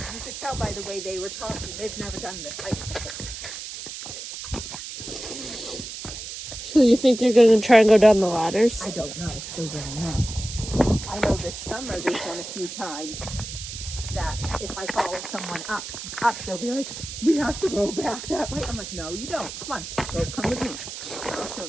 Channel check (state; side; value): noise; right; hiss, 9 dB below the sound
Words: you could tell by the way they were talking. They've never done this hike before. So you think they're going to try and go down the ladders? I don't know. They don't know. I know this summer they've done a few times that if I follow someone up, they'll be like, we have to go back that way. I'm like, no, you don't. Come on, come with me. I'll show